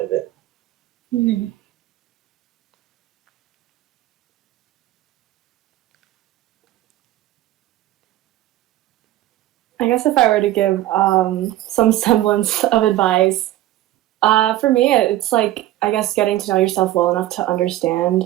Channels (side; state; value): left; quieter; 14.8 dB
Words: of it. Mm-hmm. I guess if I were to give some semblance of advice, for me, it's like, I guess, getting to know yourself well enough to